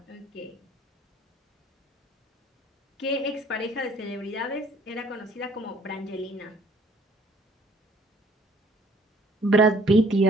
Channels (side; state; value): both; normal; correlation 0.58